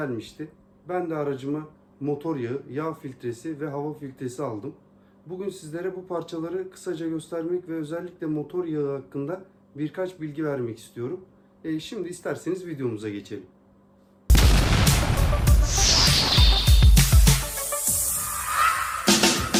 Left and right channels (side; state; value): both; identical; correlation 1.00